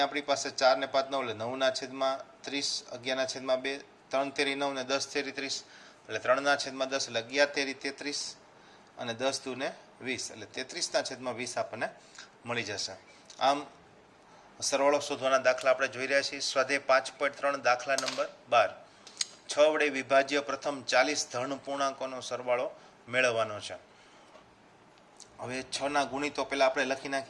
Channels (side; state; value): both; identical; correlation 1.00